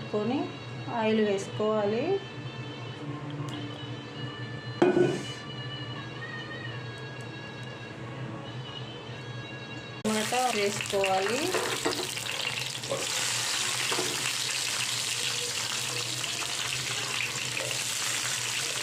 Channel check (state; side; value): identical; both; correlation 1.00